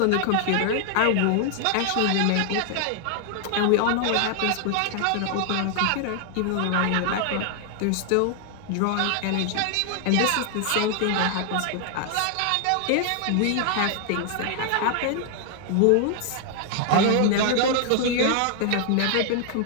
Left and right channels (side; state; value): both; different; correlation 0.00